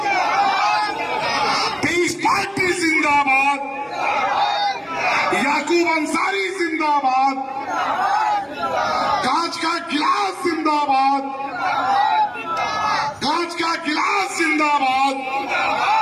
पीस पार्टी जिंदाबाद, याकूब अंसारी जिंदाबाद, कांच का गिलास जिंदाबाद, कांच का गिलास जिंदाबाद,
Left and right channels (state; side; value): identical; both; correlation 1.00